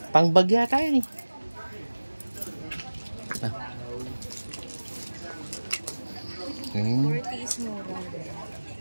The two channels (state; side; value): inverted; both; correlation -1.00